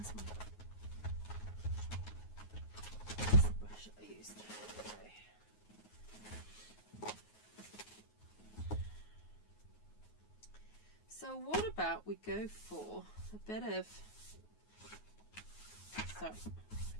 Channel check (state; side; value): late; right; 9.4 ms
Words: So what about we go for a bit of, sorry, it